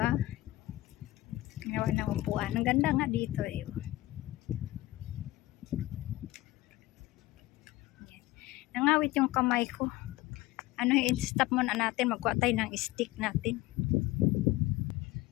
Ginawa ng upuan. Ang ganda nga dito eh. Nangawit yung kamay ko. I-stop muna natin. Magkuha tayo ng stick natin.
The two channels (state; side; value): quieter; right; 17.7 dB